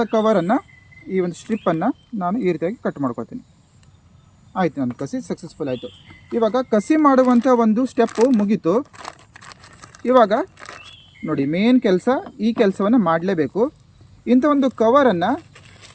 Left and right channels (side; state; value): both; identical; correlation 1.00